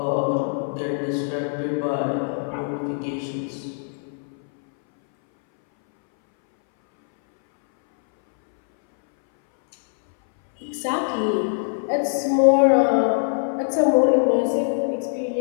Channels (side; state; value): right; silent; 61 dB below the other